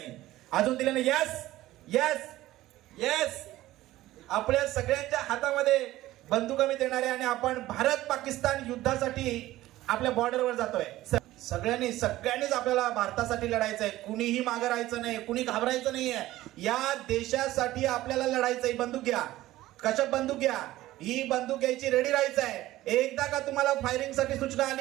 येस. आपल्या सगळ्यांच्या हातामध्ये बंदुका मी देणार आहे आणि आपण भारत पाकिस्तान युद्धासाठी आपल्या बॉर्डरवर जातोय. सगळ्यांनीच आपल्याला भारतासाठी लढायचंय. कुणीही मागे राहायचं नाही, कुणी घाबरायचं नाहीये. या देशासाठी आपल्याला लढायचंय. बंदूक घ्या. कशा बंदूक घ्या. ही बंदूक घ्यायची, रेडी राहायचंय. एकदा का तुम्हाला फायरिंग साठी सूचना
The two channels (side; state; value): left; quieter; 16.0 dB